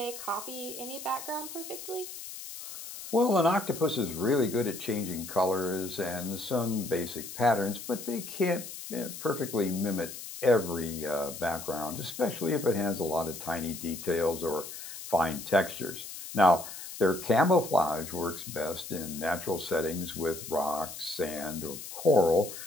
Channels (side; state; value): left; noise; hiss, 11 dB below the sound